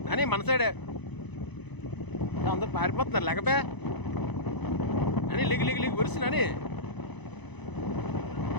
అని మన సైడే అందరూ పారిపోతున్నారు. లేకపోయా అని లెగి లెగి లెగి వరుసనని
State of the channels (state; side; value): late; right; 1.0 ms